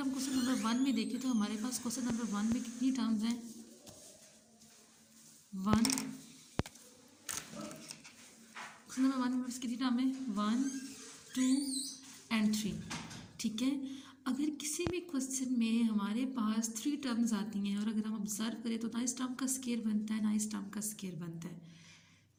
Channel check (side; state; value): both; identical; correlation 1.00